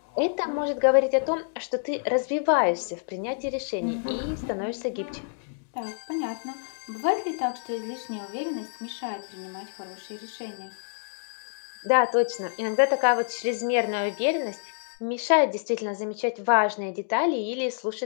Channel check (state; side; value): silent; right; digital silence